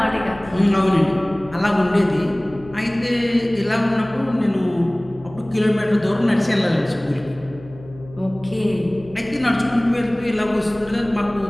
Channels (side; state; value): left; noise; hum, 19 dB below the sound